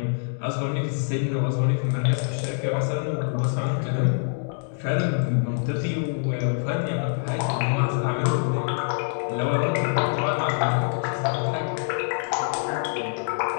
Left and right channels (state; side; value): silent; right; digital silence